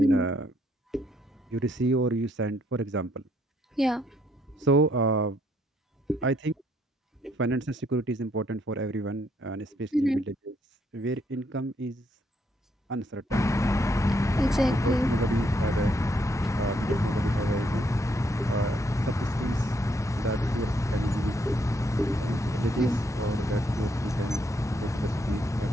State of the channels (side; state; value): both; normal; correlation 0.72